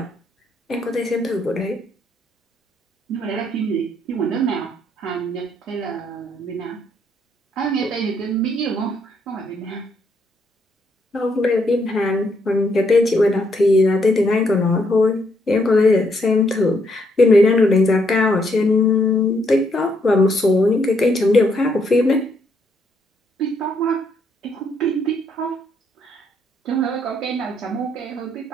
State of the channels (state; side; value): normal; both; correlation 0.73